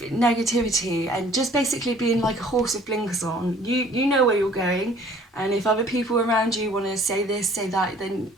negativity and just basically being like a horse with blinkers on. You know where you're going, and if other people around you want to say this, say that, then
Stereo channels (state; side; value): normal; both; correlation 0.54